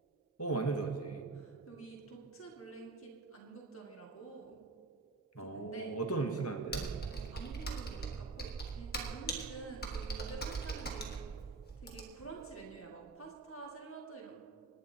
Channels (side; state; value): left; quieter; 3.7 dB